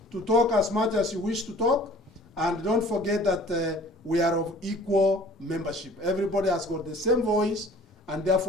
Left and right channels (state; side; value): normal; both; correlation 0.50